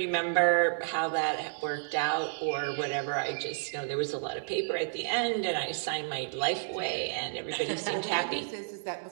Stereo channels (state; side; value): silent; left; digital silence